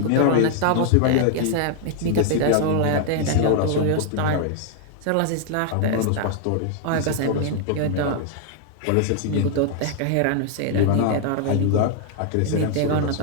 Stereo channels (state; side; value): different; both; correlation 0.00